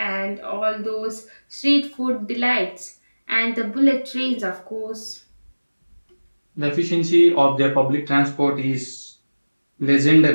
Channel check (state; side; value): inverted; both; correlation -1.00